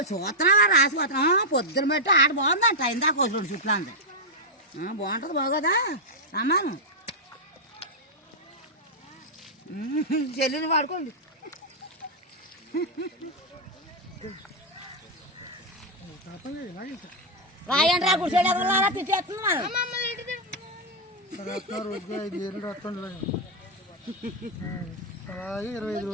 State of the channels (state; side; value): normal; both; correlation -0.02